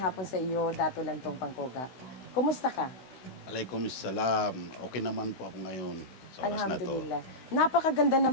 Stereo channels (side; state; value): right; late; 16 ms